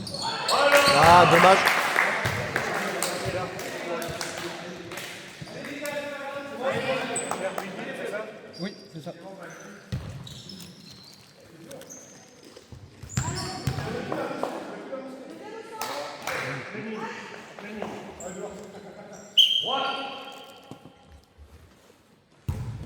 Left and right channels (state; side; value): identical; both; correlation 1.00